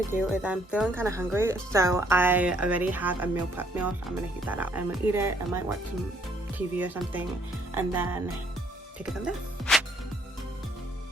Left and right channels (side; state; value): both; normal; correlation 0.67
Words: do is I'm feeling kind of hungry, so I already have a meal prep meal, so I'm gonna heat that up. I'm gonna eat it. I might watch some TV or something, and then take it from there.